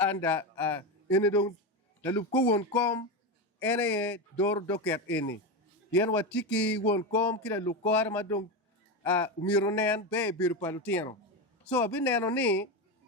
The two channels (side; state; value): both; normal; correlation 0.15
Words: ene don la lup ko won kom ene dor doket ene yen watiki won kom kila lukor ma dong umiro nen be bir palutino so abineno ni